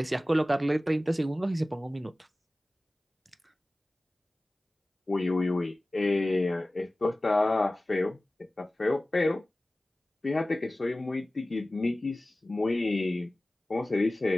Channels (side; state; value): both; normal; correlation 0.97